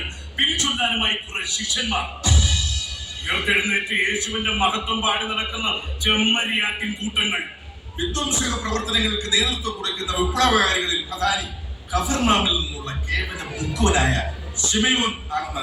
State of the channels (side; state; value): both; identical; correlation 1.00